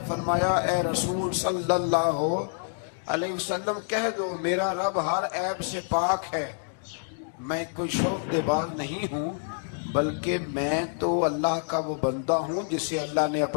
فرمایا اے رسول صلی اللہ علیہ وسلم کہہ دو میرا رب ہر عیب سے پاک ہے، میں کوئی شعبدے باز نہیں ہوں، بلکہ میں تو اللہ کا وہ بندہ ہوں جسے اللہ نے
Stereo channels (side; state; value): right; silent; digital silence